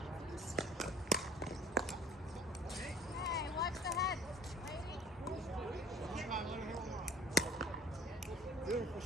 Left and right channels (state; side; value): normal; both; correlation 0.51